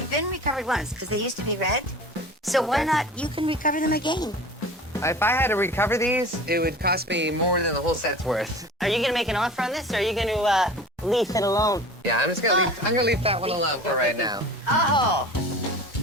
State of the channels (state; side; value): normal; both; correlation 0.38